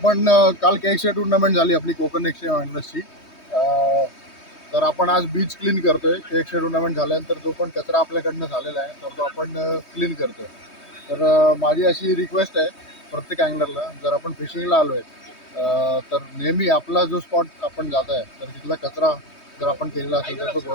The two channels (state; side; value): late; right; 3.2 ms